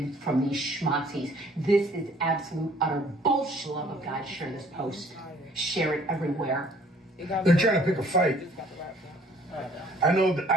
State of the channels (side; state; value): both; normal; correlation 0.57